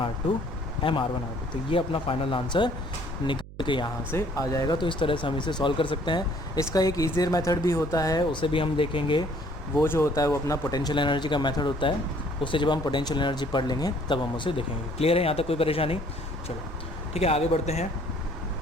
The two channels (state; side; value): noise; right; hum, 16 dB below the sound